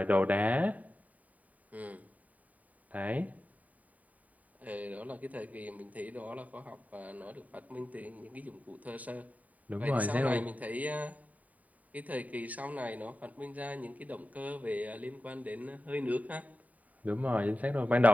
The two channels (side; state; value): left; late; 0.072 ms